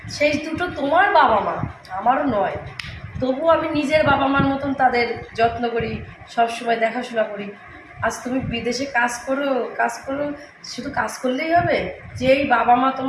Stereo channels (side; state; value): both; identical; correlation 1.00